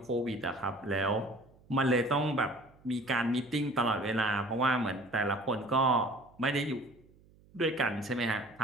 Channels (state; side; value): noise; right; hum, 28 dB below the sound